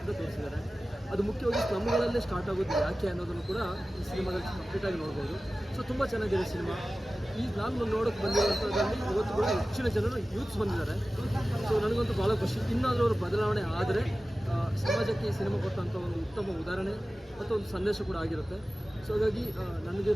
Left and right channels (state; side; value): normal; both; correlation 0.96